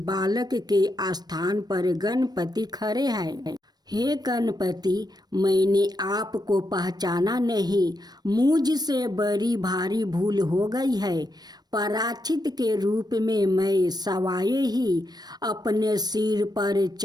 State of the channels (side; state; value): left; late; 0.19 ms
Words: के स्थान पर गणपति खड़े हैं। हे गणपति, मैंने आपको पहचाना नहीं, मुझसे बड़ी भारी भूल हो गई है। पराचित के रूप में मैं सवाए ही अपने सिर पर